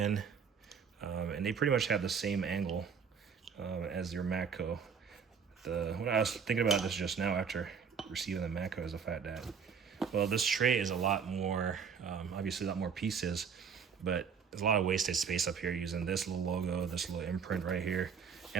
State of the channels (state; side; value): quieter; left; 6.5 dB